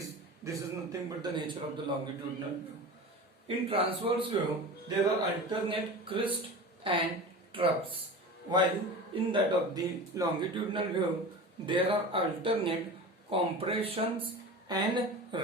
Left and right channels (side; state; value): both; normal; correlation 0.32